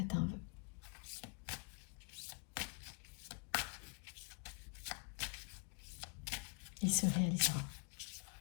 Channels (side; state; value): right; quieter; 35.6 dB